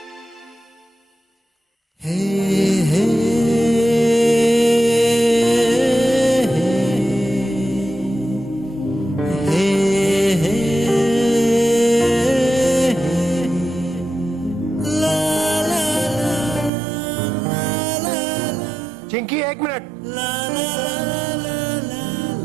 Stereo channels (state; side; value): drops out; left; at 16.7 s